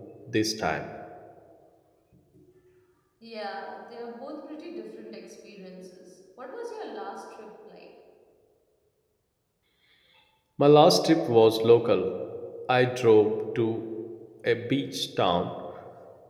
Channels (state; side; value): identical; both; correlation 1.00